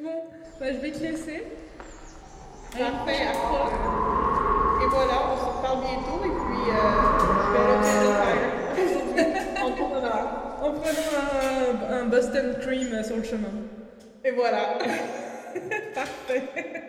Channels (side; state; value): both; identical; correlation 1.00